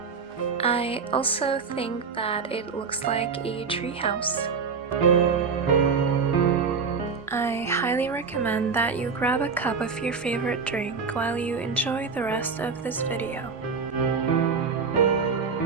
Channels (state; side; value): quieter; left; 5.3 dB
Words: I also think that it looks like a treehouse. I highly recommend that you grab a cup of your favorite drink while you enjoy the rest of this video.